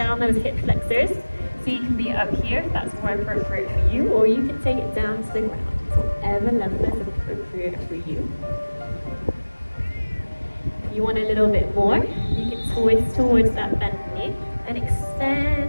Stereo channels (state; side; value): inverted; both; correlation -1.00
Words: those hip flexors. So you can be up here if that's more appropriate for you, or you can take it down to the ground. It's whatever level is appropriate for you. If you want a little bit more, you can twist towards that bent knee and